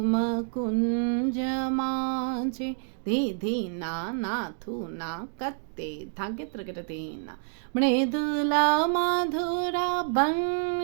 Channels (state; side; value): silent; left; digital silence